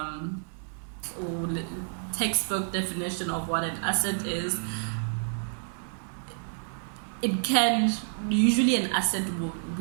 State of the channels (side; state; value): left; silent; digital silence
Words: or textbook definition of what an asset is. It can usually an asset